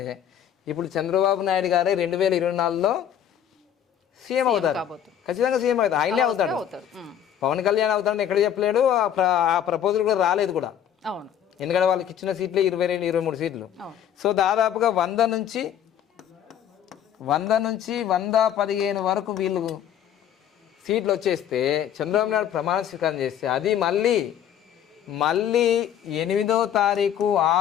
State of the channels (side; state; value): right; quieter; 9.8 dB